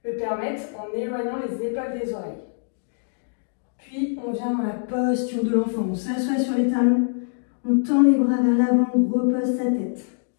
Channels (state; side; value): silent; right; digital silence